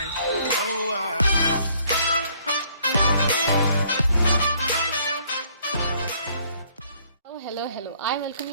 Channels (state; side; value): inverted; both; correlation -0.63